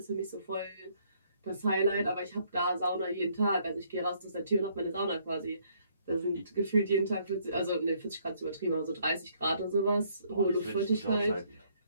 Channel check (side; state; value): both; inverted; correlation -0.67